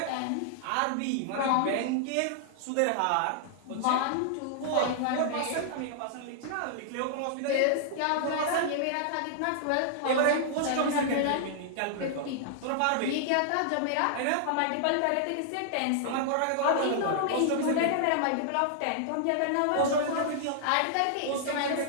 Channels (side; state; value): both; different; correlation -0.01